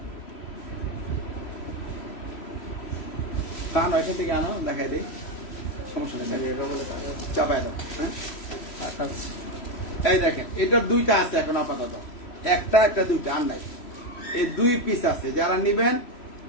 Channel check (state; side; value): late; right; 3.1 ms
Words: তা নয় এখান থেকে আনো, দেখাই দিই, সমস্যা নেই, চাপাই দাও। হ্যাঁ এই দেখেন এটার দুইটা আছে এখন আপাতত, একটা দুইটা আর নাই। এই 2 পিস আছে, যারা নিবেন